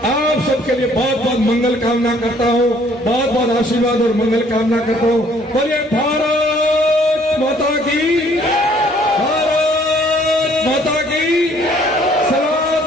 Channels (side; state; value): both; normal; correlation 0.60